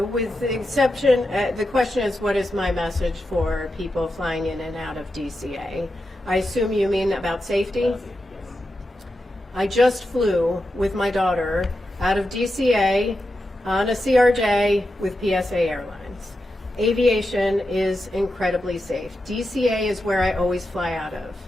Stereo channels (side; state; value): both; normal; correlation 0.88